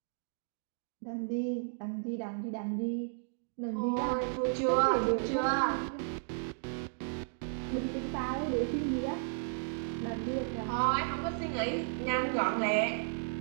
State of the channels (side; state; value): left; silent; digital silence